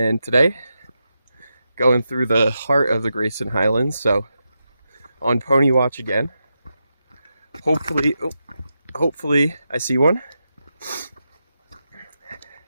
today, going through the heart of the Grayson Highlands, so on pony watch again. Hopefully I see one.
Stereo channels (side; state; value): both; inverted; correlation -0.87